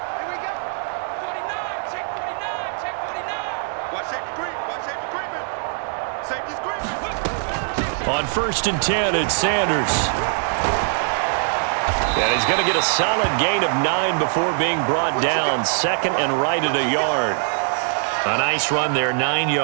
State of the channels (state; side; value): silent; left; 59 dB below the other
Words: On 1st and 10, it's Sanders. And he's going to get a solid gain of 9 before being brought down. 2nd and right at a yard. A nice run there, 9